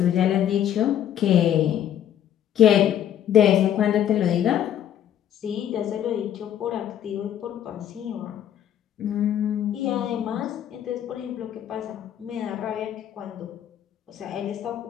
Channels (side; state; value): right; quieter; 10.4 dB